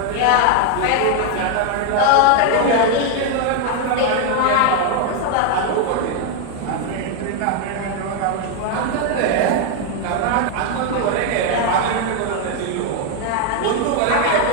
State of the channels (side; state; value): both; different; correlation 0.01